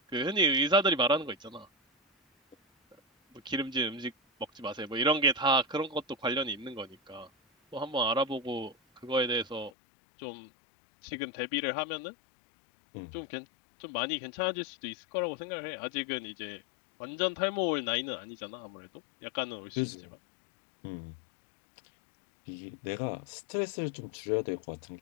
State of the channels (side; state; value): right; drops out; at 9.7 s